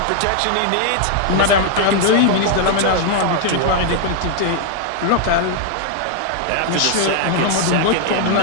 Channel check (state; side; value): different; both; correlation 0.00